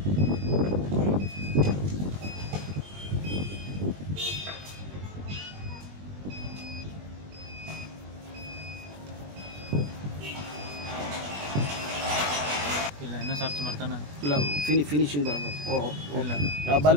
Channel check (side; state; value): left; late; 20 ms